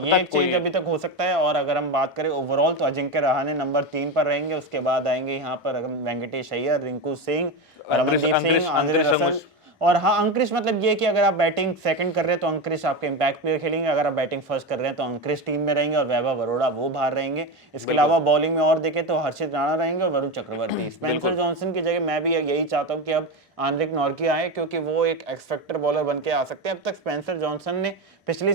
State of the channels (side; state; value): both; normal; correlation 0.18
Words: एक चेंज अभी तक हो सकता है। और अगर हम बात करें ओवरऑल तो अजिंक्य रहाणे नंबर 3 पर रहेंगे। उसके बाद आएंगे यहाँ पर वेंकटेश अय्यर, रिंकू सिंह, रमनदीप सिंह, आंद्रे रसल। और हाँ, अंक्रिश मतलब ये कि अगर आप बैटिंग सेकंड कर रहे हैं तो अंक्रिश आपके इंपैक्ट प्लेयर खेलेंगे, अगर आप बैटिंग फर्स्ट कर रहे हैं तो अंक्रिश टीम में रहेंगे और वैभव अरोड़ा वो बाहर रहेंगे। इसके अलावा बॉलिंग में और देखें तो हर्षित राणा रहेंगे और वरुण चक्रवर्ती। स्पेंसर जॉनसन की जगह मैं भी यही चाहता हूँ कि अब आंद्रिक नॉर्किया आए, क्योंकि वो एक एक्सपेक्टर बॉलर बन के आ सकते हैं। अब तक स्पेंसर जॉनसन ने पिछले